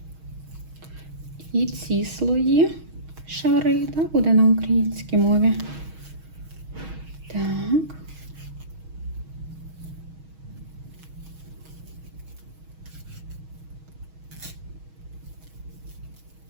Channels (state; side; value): late; left; 6.3 ms